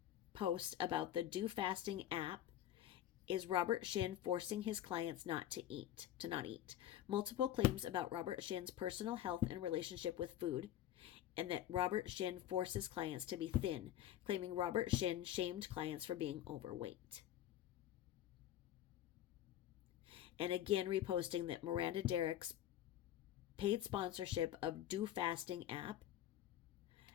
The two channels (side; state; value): right; quieter; 12.0 dB